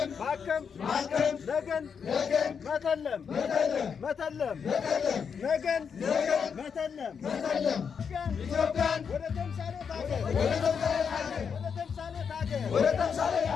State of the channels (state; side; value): quieter; right; 6.6 dB